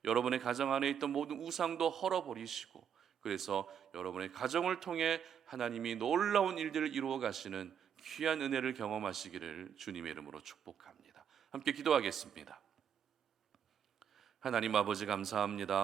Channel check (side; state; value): left; quieter; 8.4 dB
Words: 여러분의 가정 안에 있던 모든 우상도 헐어버리시고, 그래서 여러분의 가정을 통해 하나님이 놀라운 일들을 이루어 가시는 귀한 은혜를 경험하시기를 주님의 이름으로 축복합니다. 함께 기도하겠습니다. 하나님 아버지,